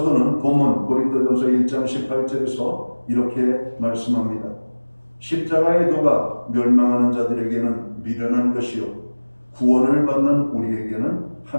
본문 고린도전서 1장 18절에서 이렇게 말씀합니다. 십자가의 도가 멸망하는 자들에게는 미련한 것이요 구원을 받는 우리에게는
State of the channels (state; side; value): inverted; both; correlation -1.00